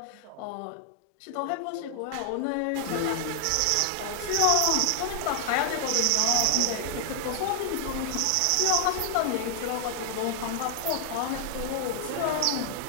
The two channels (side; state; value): both; different; correlation 0.00